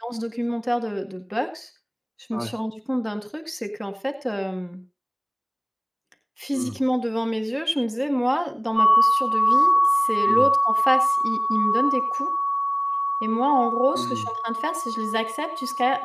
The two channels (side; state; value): both; identical; correlation 1.00